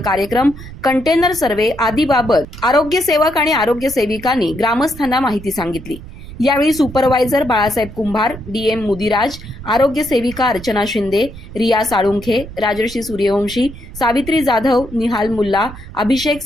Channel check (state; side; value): noise; right; rumble, 15 dB below the sound